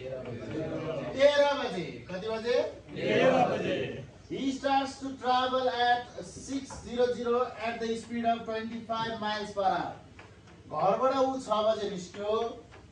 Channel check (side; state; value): both; identical; correlation 1.00